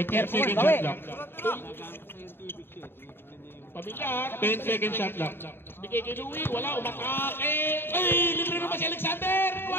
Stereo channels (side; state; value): right; late; 0.11 ms